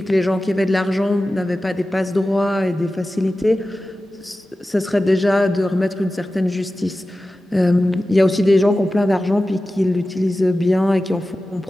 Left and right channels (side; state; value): both; normal; correlation 0.95